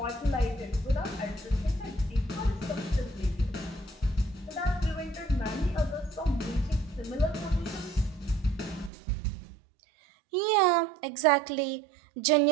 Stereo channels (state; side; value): drops out; left; at 8.9 s